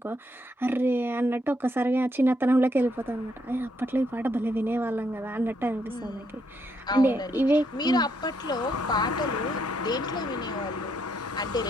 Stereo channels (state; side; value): normal; both; correlation 0.75